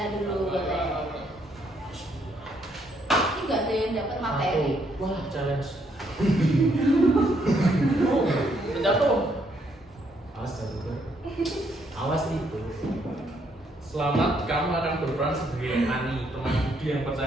dulu. Ini nggak ada yang dapat materi. Wah, challenge. Jatuh. Awas jatuh. Awas itu. Selamat, kamu akan berperan sebagai Ani, teman Budi yang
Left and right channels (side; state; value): both; normal; correlation 0.72